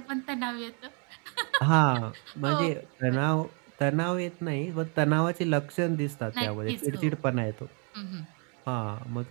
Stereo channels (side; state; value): left; quieter; 37.1 dB